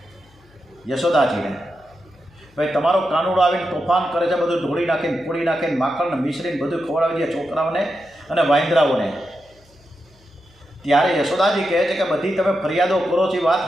યશોદાજીને, ભાઈ તમારો કાનુડો આવીને તોફાન કરે છે, બધું ઢોળી નાખીને ફોડી નાખીને માખણ મિશ્રીને બધું ખવડાવી દે છોકરાઓને અને વાંદરાઓને। ત્યારે યશોદાજી કહે છે કે બધી તમે ફરિયાદો કરો છો એ વાત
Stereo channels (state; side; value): noise; left; hum, 29 dB below the sound